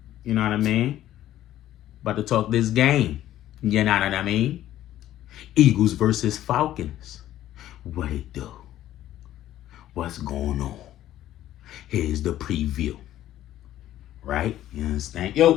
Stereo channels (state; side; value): quieter; right; 13.0 dB